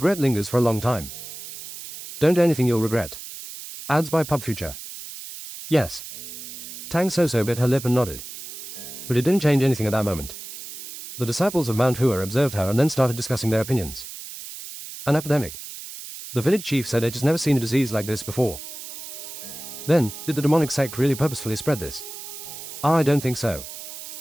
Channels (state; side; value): noise; right; hiss, 11 dB below the sound